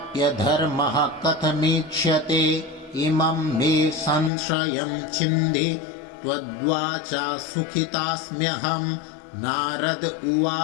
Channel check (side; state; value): right; drops out; at 4.3 s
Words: कथमीक्ष्यते इमं मे संशयं छिन्धि त्वद्वाचा सुखितास्म्यहम् नारद